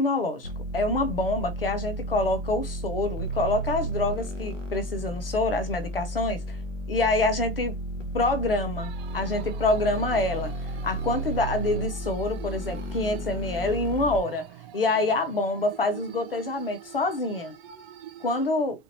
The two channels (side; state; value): both; normal; correlation 0.29